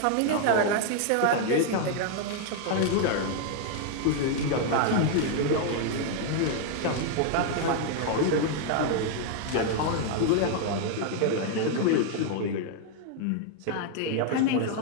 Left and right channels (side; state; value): both; different; correlation 0.00